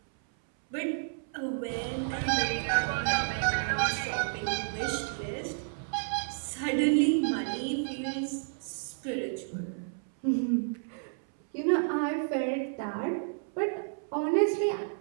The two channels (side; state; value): left; silent; 57 dB below the other